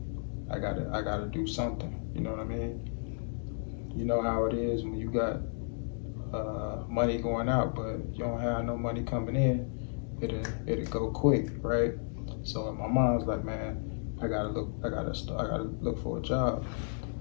I gotta do something. You know what I mean? You know how it is when you got money going out, but you don't have no money coming in. It'll go quick, right? So in my mind, I was like, man, I gotta look for a job.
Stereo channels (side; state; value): right; silent; digital silence